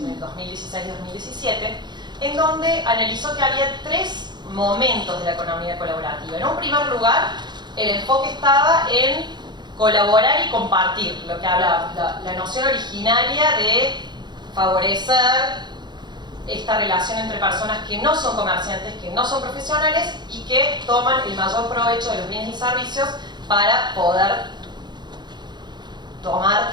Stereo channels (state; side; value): late; left; 0.21 ms